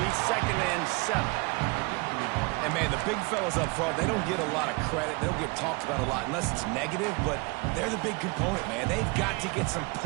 2nd and 7. And, man, the big fellas up front, they don't get a lot of credit. They don't get talked about a lot unless it's negative, but they're the big component, man. They've got to get some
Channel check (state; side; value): quieter; left; 27.8 dB